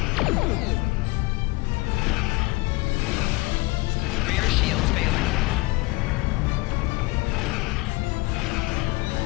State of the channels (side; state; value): right; quieter; 23.3 dB